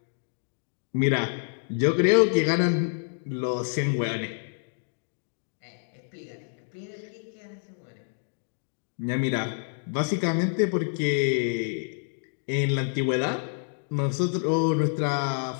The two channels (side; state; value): right; silent; digital silence